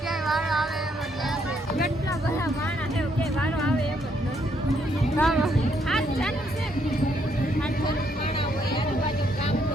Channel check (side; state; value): both; normal; correlation 0.72